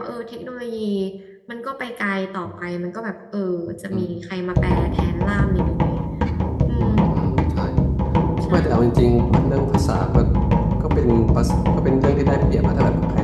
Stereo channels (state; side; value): identical; both; correlation 1.00